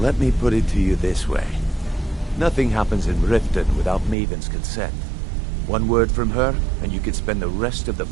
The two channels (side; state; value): left; drops out; at 4.2 s